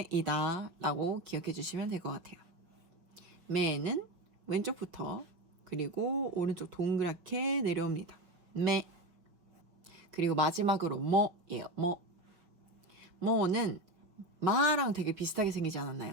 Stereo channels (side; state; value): left; late; 5.7 ms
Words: 라고 기억해 주시면 될 것 같아요. 매는 왼쪽부터 그리고 오른쪽 동그랗게 내려옵니다. 매. 그리고 마지막으로 뭐예요. 뭐는 마랑 되게 비슷하게 생기지